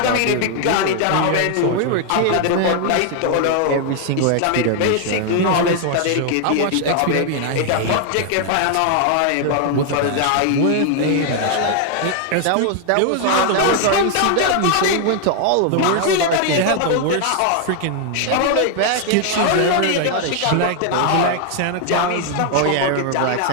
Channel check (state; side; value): different; both; correlation 0.00